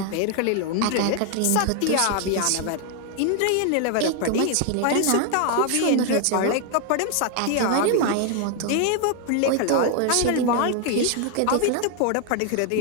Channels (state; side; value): different; both; correlation 0.00